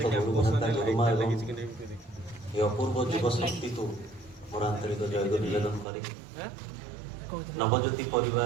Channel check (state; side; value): drops out; left; at 5.9 s